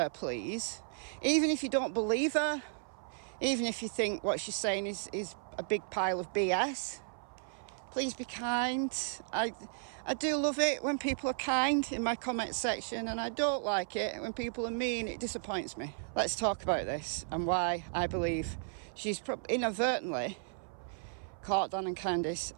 please. Even if you don't believe her, even if you think what she's saying is a big pile of BS, please be kind. I do love it when people are kind in my comment section, and I don't like it when people are mean. It disappoints me. Let's talk about this and why I believe she's inadvertently caught Don and Candus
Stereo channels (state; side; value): silent; left; 55 dB below the other